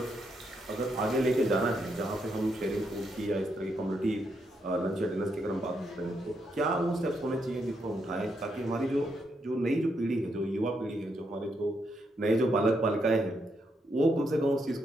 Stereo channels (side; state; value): both; normal; correlation 0.79